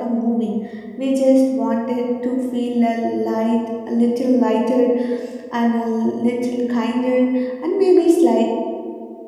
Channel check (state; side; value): identical; both; correlation 1.00